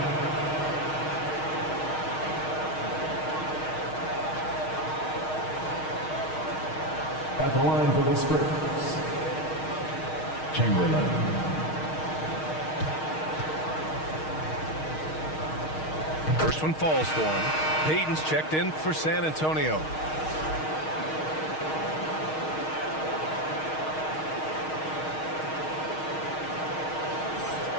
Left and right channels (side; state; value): right; late; 6.4 ms